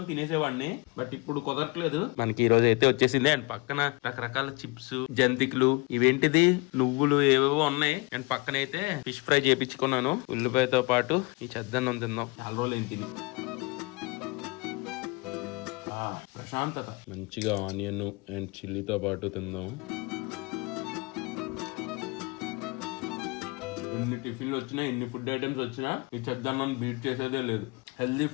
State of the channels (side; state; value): right; quieter; 27.5 dB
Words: తినేసేవాడిని, బట్ ఇప్పుడు కుదరట్లేదు. మనకి ఈ రోజు అయితే వచ్చేసింది. అండ్ పక్కన రకరకాల చిప్స్, జంతికలు, ఇవేంటిది నువ్వులు ఏవేవో ఉన్నాయి. అండ్ పక్కన అయితే ఫిష్ ఫ్రై చేయించుకున్నాను ఉల్లిపాయతో పాటు. ఈ చెద్దన్నం తిందాం, చాలా రోజులు ఏం తిని. ప్రశాంతత. మంచిగా ఆనియన్ అండ్ చిల్లీతో పాటు తిందాం. ఎన్ని టిఫిన్లు వచ్చినా, ఎన్ని ఫుడ్ ఐటమ్స్ వచ్చినా ఈ చెద్దన్నం బీట్ చేసేదే లేదు. హెల్దీ